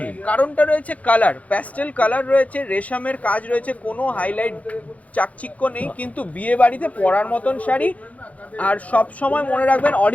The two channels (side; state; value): right; late; 0.068 ms